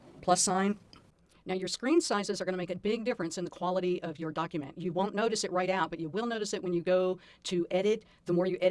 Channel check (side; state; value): both; identical; correlation 1.00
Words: plus sign. Now your screen sizes are going to make a big difference in the quality of your document. You won't notice it right out, but you will notice it when you go to edit. The more you